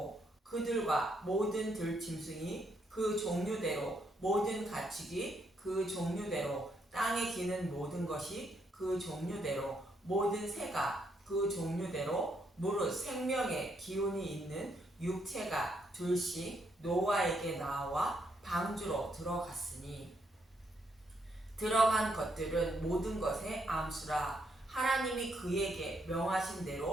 그들과 모든 들짐승이 그 종류대로, 모든 가축이 그 종류대로, 땅에 기는 모든 것이 그 종류대로, 모든 새가 그 종류대로, 무릇 생명의 기운이 있는 육체가 둘씩 노아에게 나와 방주로 들어갔으니, 들어간 것들은 모든 것의 암수라. 하나님이 그에게 명하신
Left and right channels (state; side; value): normal; both; correlation 0.76